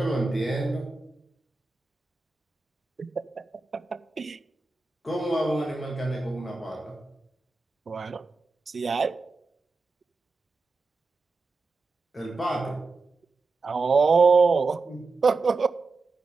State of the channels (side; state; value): left; quieter; 3.9 dB